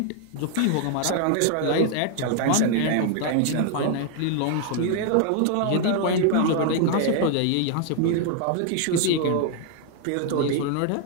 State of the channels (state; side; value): different; both; correlation 0.00